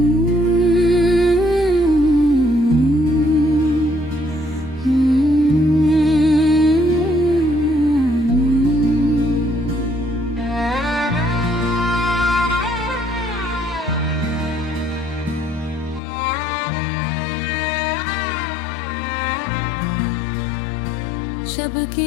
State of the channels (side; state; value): right; drops out; at 16.0 s